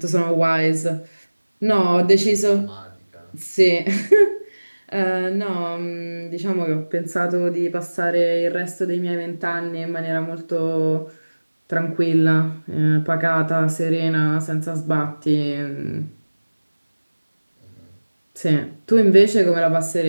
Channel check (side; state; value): both; inverted; correlation -1.00